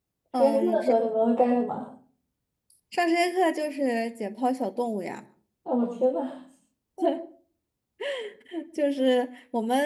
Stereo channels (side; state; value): both; identical; correlation 1.00